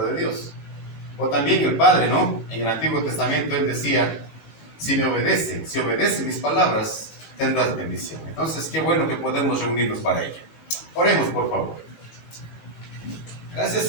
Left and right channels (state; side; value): late; right; 18 ms